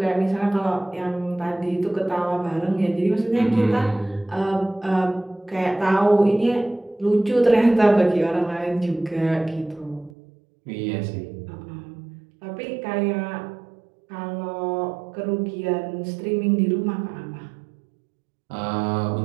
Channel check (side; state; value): left; drops out; at 10.1 s